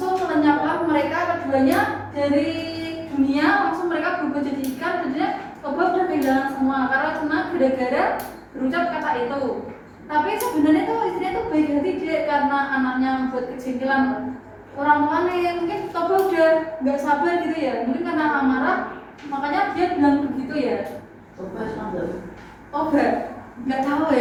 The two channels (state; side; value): identical; both; correlation 1.00